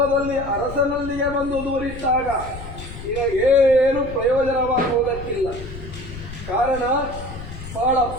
ಅರಸನಲ್ಲಿಯೇ ಬಂದು ದೂರಿಟ್ಟಾಗ ನಿನಗೇನು ಪ್ರಯೋಜನವಾಗುವುದಕ್ಕಿಲ್ಲ. ಕಾರಣ ಬಹಳ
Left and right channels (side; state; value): left; noise; rumble, 12 dB below the sound